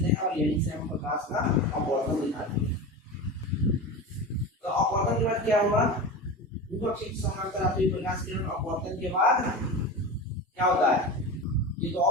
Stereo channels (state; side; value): normal; both; correlation 0.27